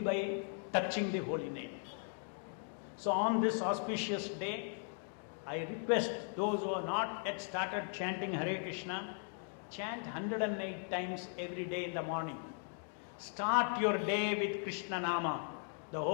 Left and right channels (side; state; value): right; silent; 52 dB below the other